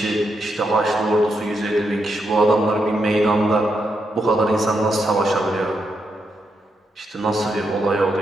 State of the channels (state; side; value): normal; both; correlation 0.82